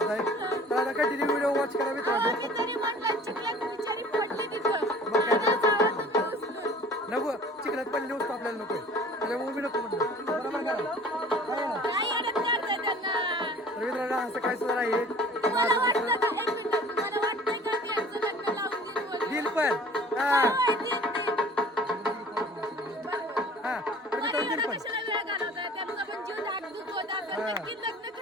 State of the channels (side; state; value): both; normal; correlation 0.47